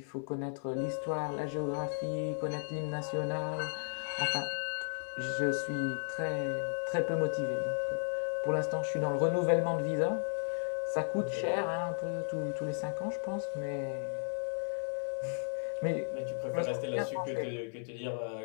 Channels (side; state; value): right; silent; digital silence